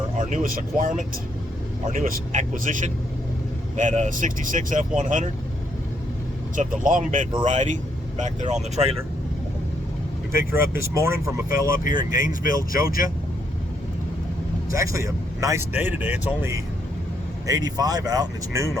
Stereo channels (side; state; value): both; normal; correlation 0.74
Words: newest acquirement, our newest acquisition, that 66 F100. It's of the longbed variety, back there on the trailer. We picked her up this morning from a fella up here in Gainesville, Georgia. It's actually a nice day today. It's only 85 out and it's noon